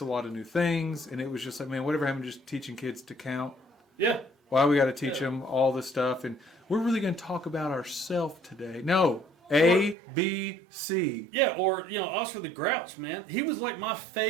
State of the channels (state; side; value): drops out; left; at 10.0 s